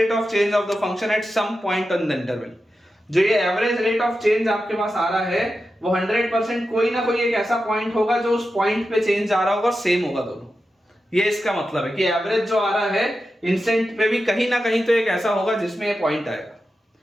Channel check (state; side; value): normal; both; correlation 0.91